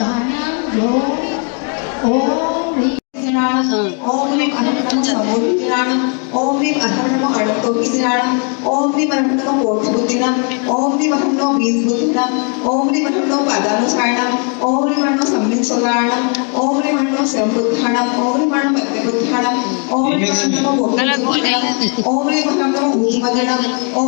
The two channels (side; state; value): right; quieter; 39.4 dB